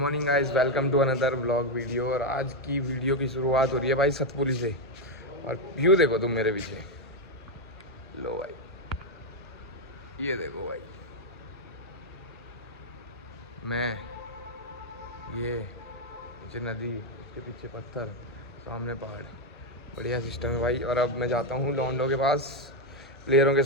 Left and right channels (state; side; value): normal; both; correlation 0.04